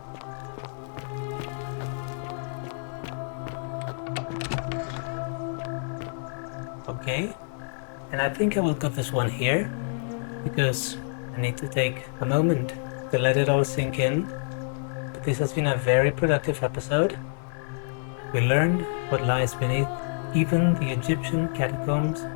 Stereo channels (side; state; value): right; silent; digital silence